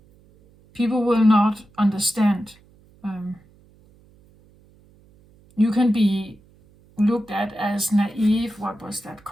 people will not understand. You can be looked at as naive. What was that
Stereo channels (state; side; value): noise; right; hum, 29 dB below the sound